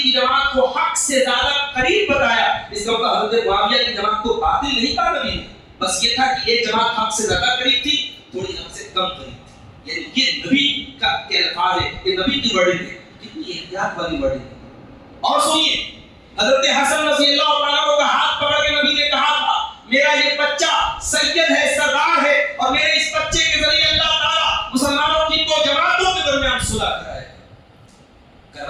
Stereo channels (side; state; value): both; identical; correlation 1.00